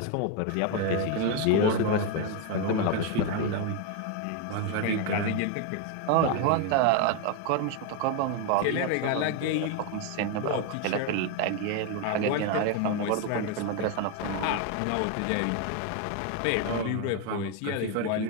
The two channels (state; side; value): different; both; correlation 0.01